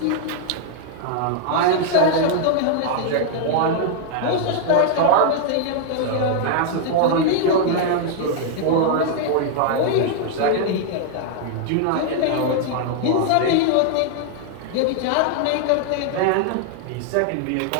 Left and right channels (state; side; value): different; both; correlation -0.01